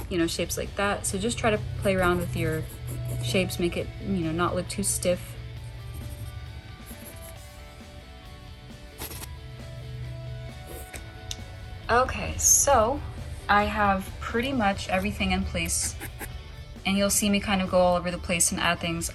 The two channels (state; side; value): identical; both; correlation 1.00